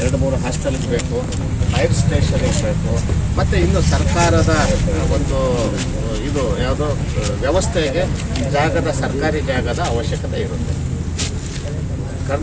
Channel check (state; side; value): identical; both; correlation 1.00